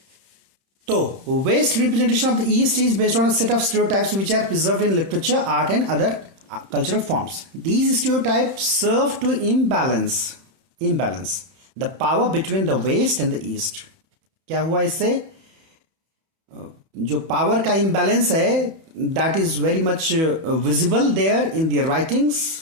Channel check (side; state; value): left; late; 31 ms